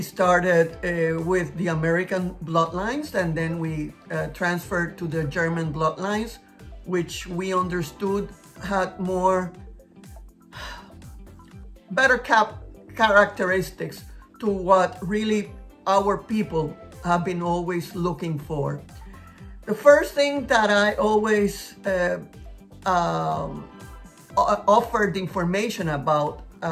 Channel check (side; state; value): both; identical; correlation 1.00